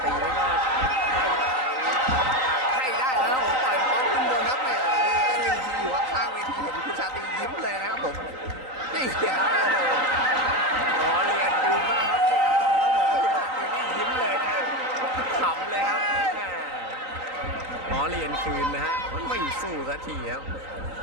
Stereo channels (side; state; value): left; late; 3.9 ms